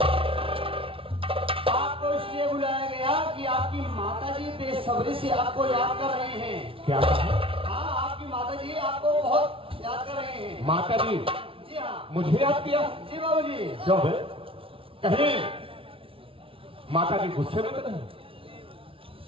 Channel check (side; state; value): left; late; 0.26 ms